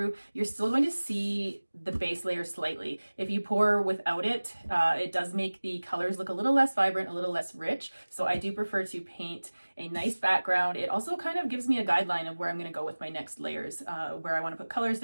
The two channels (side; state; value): both; inverted; correlation -1.00